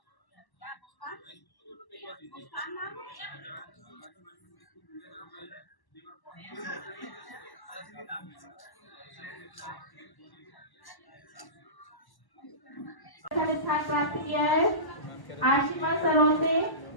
स्थान प्राप्त किया है आशिमा सरोते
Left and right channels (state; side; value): late; right; 1.1 ms